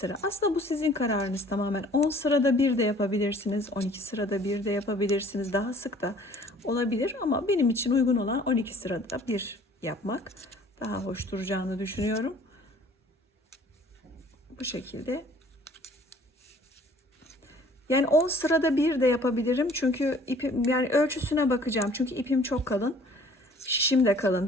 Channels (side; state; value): both; normal; correlation 0.54